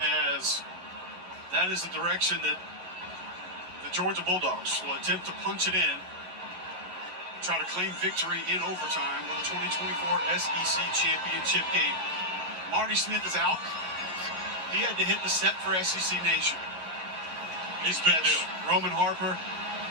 As that is the direction that the Georgia Bulldogs will attempt to punch it in, try to claim victory in overtime with the 2024 SEC Championship game. Marty Smith is out. He had to hit the set for SEC Nation. He's been deal. Roman Harper,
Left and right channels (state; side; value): late; left; 11 ms